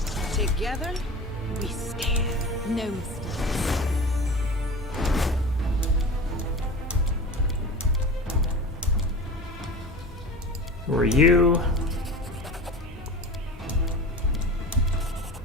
Together, we stand. No mistakes. Who are you?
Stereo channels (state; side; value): normal; both; correlation 0.33